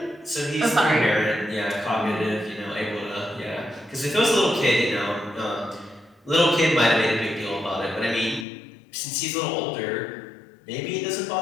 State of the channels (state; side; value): drops out; right; at 8.5 s